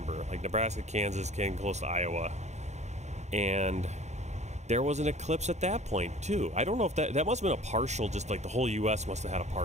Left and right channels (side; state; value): left; late; 0.33 ms